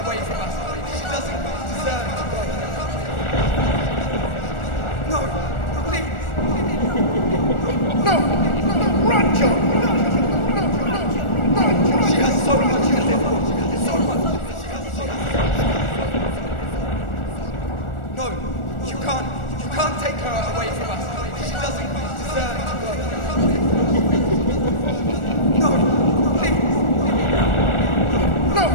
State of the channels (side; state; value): right; late; 1.4 ms